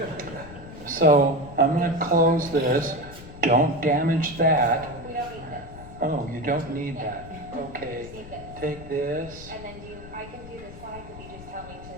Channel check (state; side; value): noise; left; rumble, 15 dB below the sound